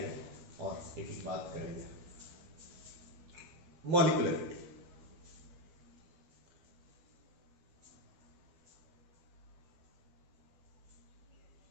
और एक एक बात करेंगे। Molecularity.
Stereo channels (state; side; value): late; left; 12 ms